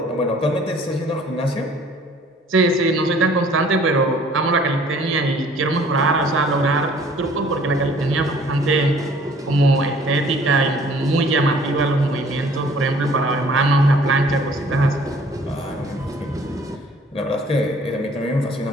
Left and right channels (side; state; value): both; normal; correlation 0.55